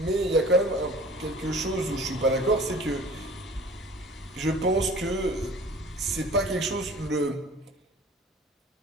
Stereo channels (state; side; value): normal; both; correlation 0.45